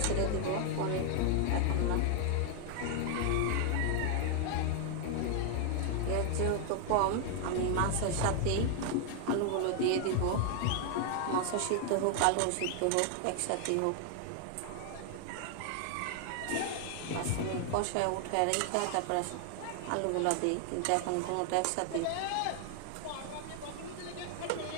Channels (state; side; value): different; both; correlation 0.00